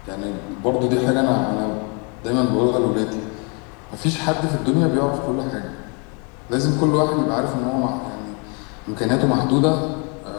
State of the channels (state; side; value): quieter; right; 34.4 dB